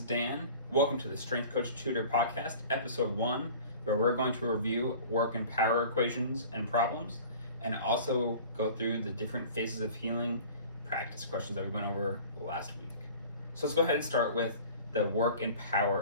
Dan. Welcome to the Strength Coach Tutor Podcast, Episode 1, where we're going to review work and power equations and problems, and also go through the different phases of healing practice questions that we went over last week. So let's go ahead and start with the work and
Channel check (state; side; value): inverted; both; correlation -0.43